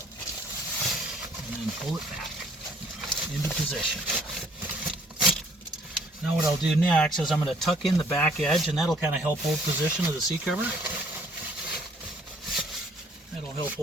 and then pull it back into position. Now what I'll do next is I'm going to tuck in the back edge, and that'll kind of help hold position of the seat cover. That'll help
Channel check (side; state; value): both; normal; correlation 0.60